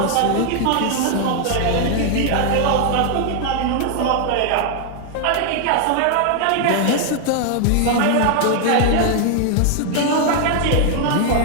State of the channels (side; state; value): both; different; correlation 0.00